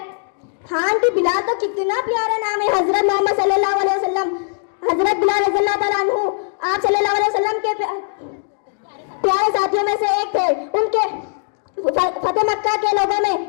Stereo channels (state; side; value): silent; right; digital silence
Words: हाँ आंटी, बिलाल तो कितना प्यारा नाम है। हजरत मोहम्मद सल्लल्लाहु अलैहि वसल्लम, हजरत बिलाल रज़ियल्लाहु ताला अन्हु, आप सल्लल्लाहु अलैहि वसल्लम के प्यारे साथियों में से एक थे। उनके फतेह मक्का के लोगों में,